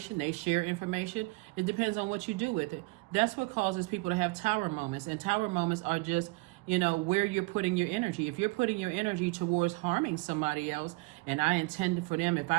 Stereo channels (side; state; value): left; quieter; 25.5 dB